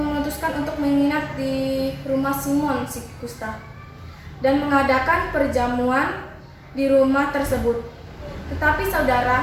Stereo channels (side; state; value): both; identical; correlation 1.00